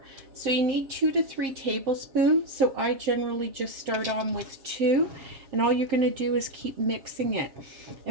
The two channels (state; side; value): late; left; 7.4 ms